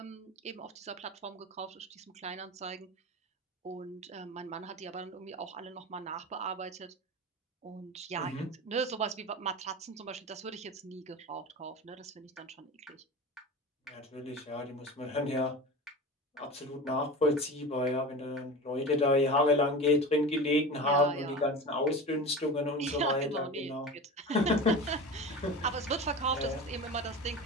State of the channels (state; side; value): normal; both; correlation 0.30